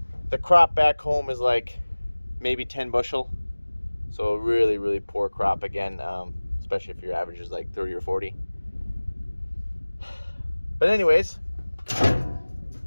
crop back home is like maybe 10 bushel. So really, really poor crop again, especially if your average is like 30 or 40. But anyways,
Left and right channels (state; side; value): inverted; both; correlation -1.00